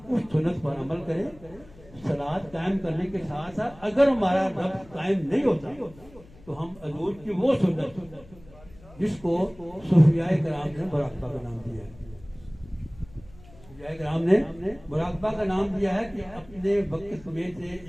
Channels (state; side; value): noise; left; hum, 23 dB below the sound